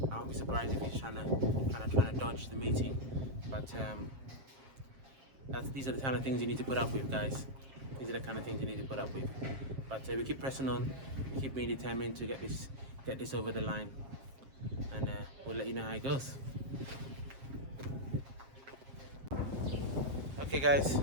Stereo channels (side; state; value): left; late; 7.5 ms